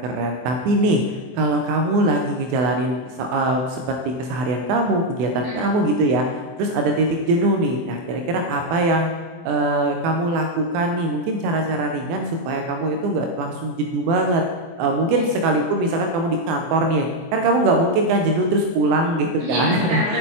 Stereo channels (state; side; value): late; left; 24 ms